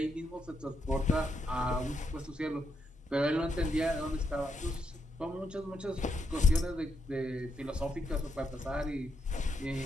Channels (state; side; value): normal; both; correlation 0.80